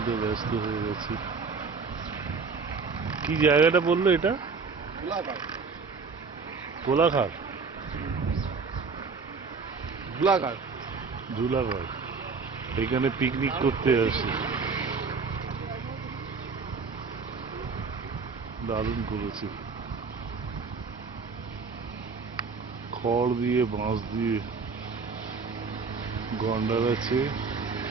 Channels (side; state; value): left; quieter; 4.8 dB